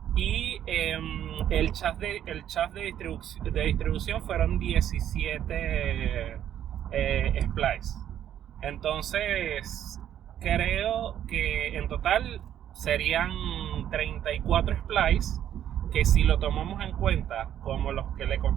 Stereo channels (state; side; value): quieter; left; 10.6 dB